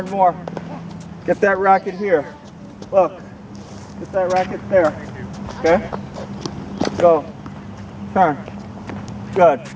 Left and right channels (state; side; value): identical; both; correlation 1.00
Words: more. Get that racket here. Look. Get that racket there. Okay? Go. Turn. Good.